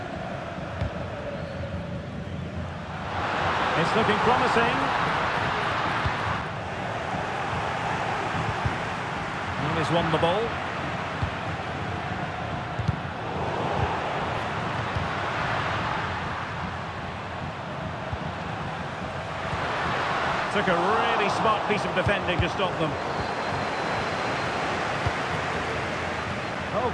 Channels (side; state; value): both; identical; correlation 1.00